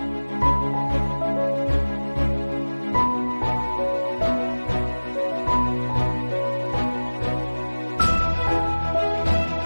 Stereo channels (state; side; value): inverted; both; correlation -1.00